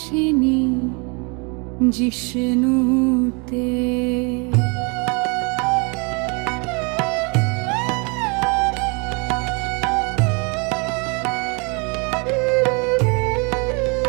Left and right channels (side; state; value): left; quieter; 32.0 dB